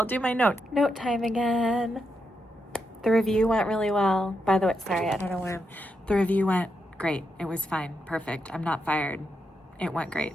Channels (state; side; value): normal; both; correlation 0.83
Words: do my notes. Note time again. The review went really well. By the way, sorry, I don't know where. The review went great. It was fine. Perfect. I'm not fired. It went great.